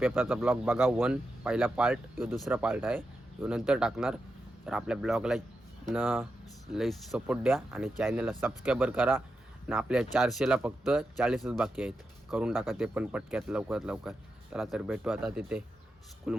ब्लॉग बघा. पहिला पार्ट, यो दुसरा पार्ट आहे, यो नंतर टाकणार. तर आपल्या ब्लॉगला लई सपोर्ट द्या आणि चॅनलला सबस्क्राईबर करा. आणि आपल्या 400ला फक्त 40च बाकी आहेत, करून टाका ते पण पटक्यात लवकरात लवकर. चला तर भेटू आता तिथे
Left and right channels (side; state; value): both; normal; correlation 0.88